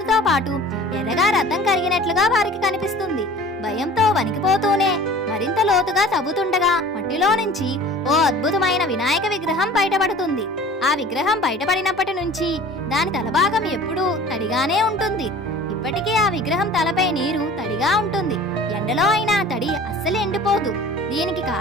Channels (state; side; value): normal; both; correlation 0.44